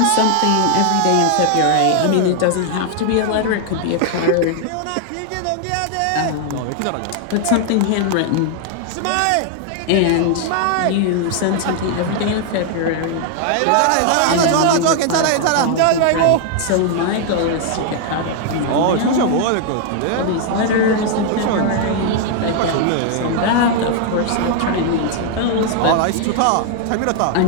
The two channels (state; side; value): different; both; correlation 0.00